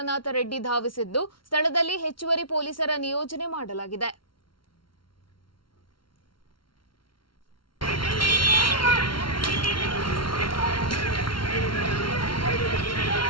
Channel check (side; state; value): right; late; 0.73 ms